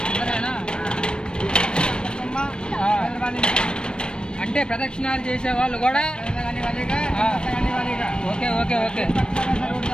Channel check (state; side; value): late; right; 0.053 ms